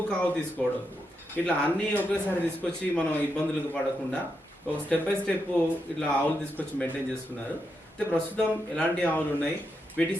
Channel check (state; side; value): normal; both; correlation 0.83